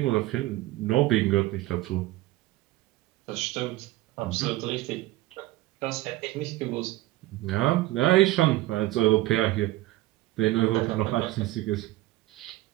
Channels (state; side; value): quieter; left; 17.2 dB